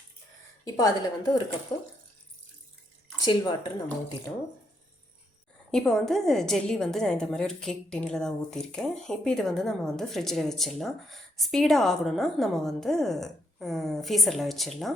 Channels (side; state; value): both; normal; correlation 0.76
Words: இப்போ அதில் ஒரு கப்பு சில் வாட்டர் நம்ம ஊற்றிட்டோம். இப்போ ஜெல்லி நான் இந்த மாதிரி ஒரு கேக் டின்னில் தான் ஊற்றிருக்கேன். இப்போ இது நம்ம ஃப்ரிட்ஜில் வச்சிடலாம். ஸ்பீடாக ஆகணும்னா நம்ம ஃப்ரீசரில்